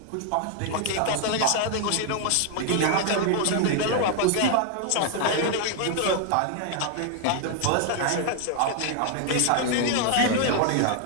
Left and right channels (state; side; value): different; both; correlation 0.00